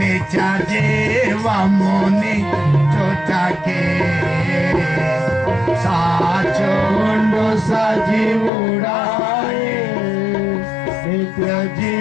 నిత్య జీవముని చుటకే సాచుండు సజీవుడాయే నిత్య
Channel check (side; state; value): right; drops out; at 8.5 s